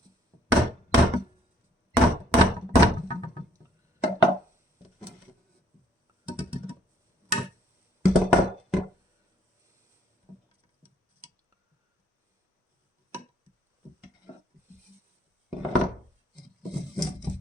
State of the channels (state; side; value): normal; both; correlation 0.63